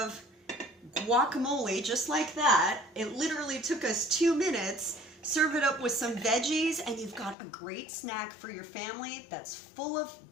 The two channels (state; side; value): drops out; right; at 7.4 s